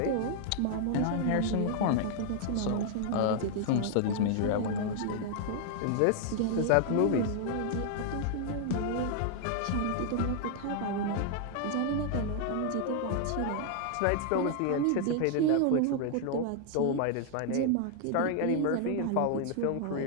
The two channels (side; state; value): both; different; correlation 0.00